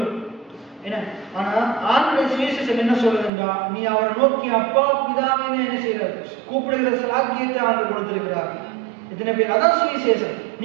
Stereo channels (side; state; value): left; drops out; at 3.3 s